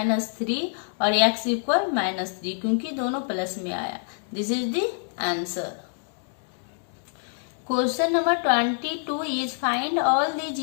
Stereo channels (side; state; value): right; silent; 61 dB below the other